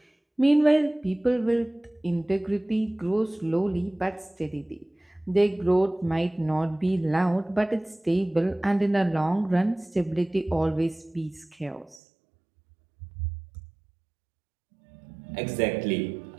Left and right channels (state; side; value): drops out; left; at 12.0 s